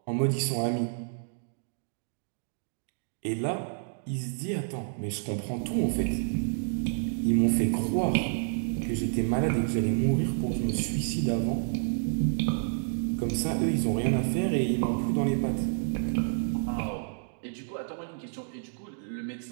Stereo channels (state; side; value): silent; left; digital silence